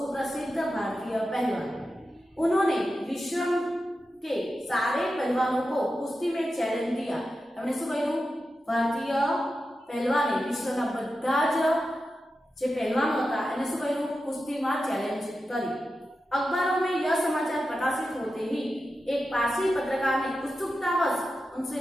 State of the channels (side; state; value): both; normal; correlation 0.91